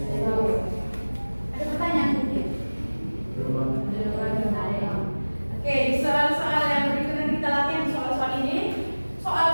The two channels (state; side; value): inverted; both; correlation -1.00